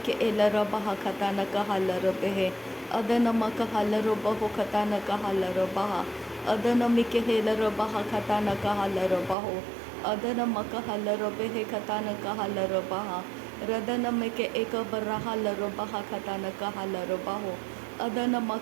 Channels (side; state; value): left; drops out; at 9.3 s